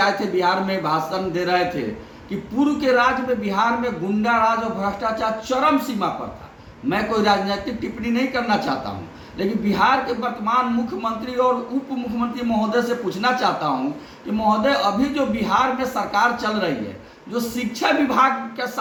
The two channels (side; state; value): both; identical; correlation 1.00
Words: थे बिहार में, भाषण दे रहे थे कि पूर्व के राज्य में बिहार में गुंडा राज और भ्रष्टाचार चरम सीमा पर था। मैं कोई राजनीतिक टिप्पणी नहीं करना चाहता हूं, लेकिन बिहार के वर्तमान मुख्यमंत्री और उप मुख्यमंत्री महोदय से पूछना चाहता हूं कि महोदय, अभी जो बिहार में सरकार चल रही है, जो शिक्षा विभाग का